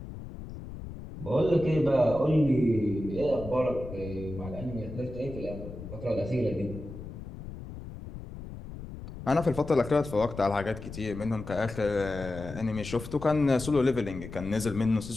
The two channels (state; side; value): noise; left; rumble, 12 dB below the sound